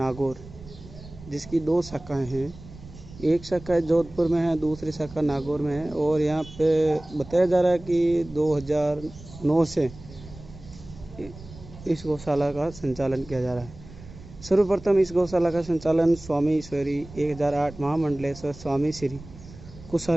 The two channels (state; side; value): noise; right; rumble, 17 dB below the sound